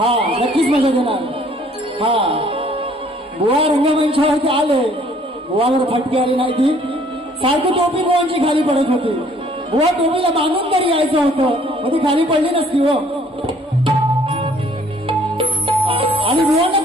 नक्कीच मजा देणार. हा, बुवा रंगमंचावरती आले, बुवावर फटके आली नाही ती. सारखी टोपी बुवांची खाली पडत होती. बुवा टोपीला बांधून तरी यायचं होतं, मग ती खाली पडली नसती हो. आणि बुवांना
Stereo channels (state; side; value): normal; both; correlation 0.59